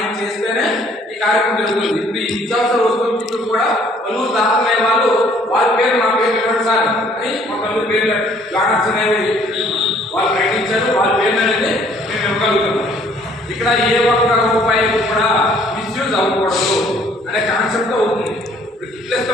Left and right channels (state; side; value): normal; both; correlation 0.60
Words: చేస్తేనే ఈ కార్యక్రమం జరుగుతుంది. ఇప్పుడు ఈ నిత్యావసర వస్తువులు కూడా పలువురు దాతలే వాళ్ళు వాళ్ళ పేరు నా పేరు ఇవ్వండి సార్ అని మా పలువురు పేర్లు బ్యానర్స్ అనేవి వాళ్ళు ప్రకటించారు. వాళ్ళ పేర్లు అనేది మేము ఇవ్వగలుగుతున్నాం. ఇక్కడ ఏ ఒక్క రూపాయి కూడా మిస్యూజ్ అవ్వకూడదు అనే కాన్సెప్ట్ అవుతుంది. ఇప్పుడు గిఫ్ట్లు